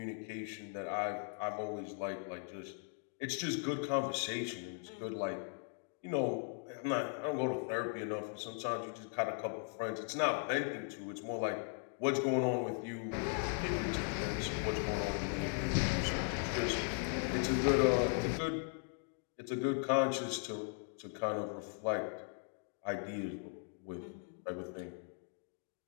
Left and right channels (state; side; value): silent; right; 52 dB below the other